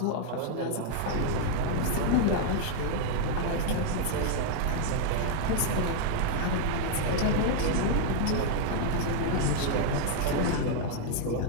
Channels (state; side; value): different; both; correlation 0.00